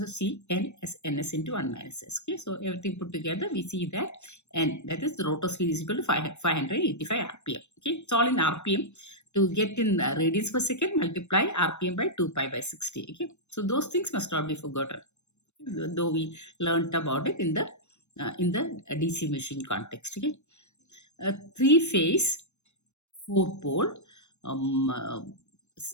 see N as Ns into 1 minus S. Okay, so everything put together, we see that N, that is the rotor speed, is equal to 585 RPM. Okay, it's all in RPM. To get in radians per second, multiply RPM by 2 pi by 60. Okay, so those things must not be forgotten, though we learnt about it in the DC machine context. Okay, 3-phase 4-pole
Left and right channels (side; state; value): right; late; 0.82 ms